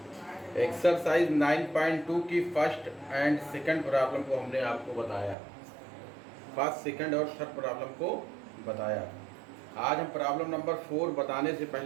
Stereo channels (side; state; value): left; drops out; at 5.4 s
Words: एक्सरसाइज 9.2 की फर्स्ट एंड सेकंड प्रॉब्लम को हमने आपको बताया, फर्स्ट सेकंड और थर्ड प्रॉब्लम को बताया। आज हम प्रॉब्लम नंबर 4 बताने से